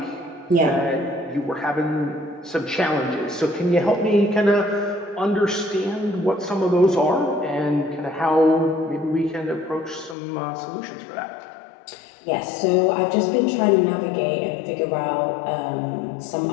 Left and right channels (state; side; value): drops out; right; at 10.2 s